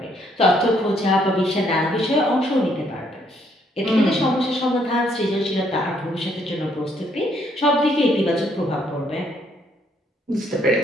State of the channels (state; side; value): normal; both; correlation 0.69